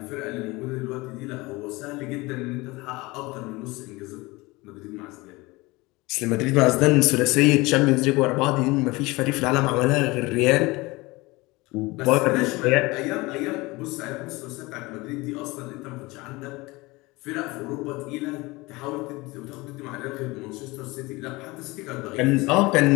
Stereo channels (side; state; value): right; quieter; 22.6 dB